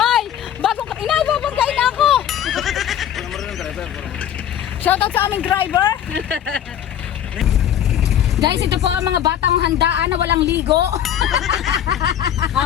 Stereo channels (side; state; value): right; quieter; 10.1 dB